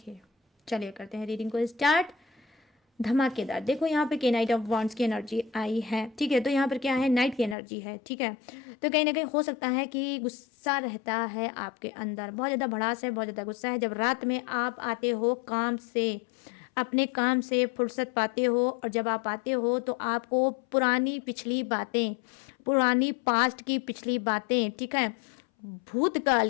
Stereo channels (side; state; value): right; drops out; at 7.6 s